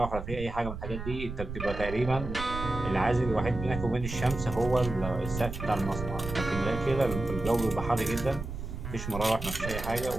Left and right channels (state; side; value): noise; right; rumble, 7 dB below the sound